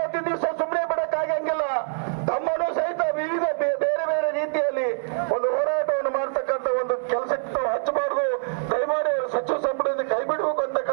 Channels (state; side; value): silent; left; digital silence